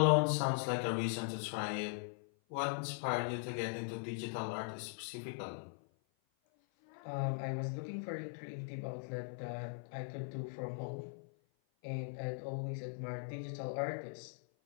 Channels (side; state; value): right; silent; 51 dB below the other